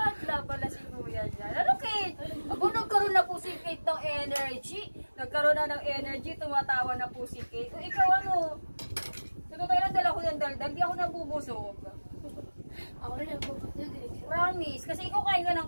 pala si Kuya dyan. Ano, Kate? Ako, nagkaroon na po si Kate ng energy. Nagkaroon na ng energy, tumatawa na po si Kate. O ikaw ano? Totoo lang, dala ko ng daldal, di ako nabubusog. Ako rin nagpuputog eh. Promise. Kasi ikaw kain ka ng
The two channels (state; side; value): inverted; both; correlation -1.00